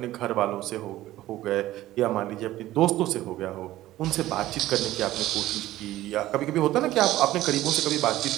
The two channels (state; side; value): quieter; left; 15.3 dB